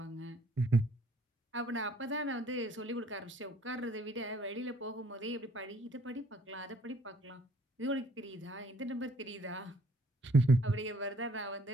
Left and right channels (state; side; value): normal; both; correlation 0.60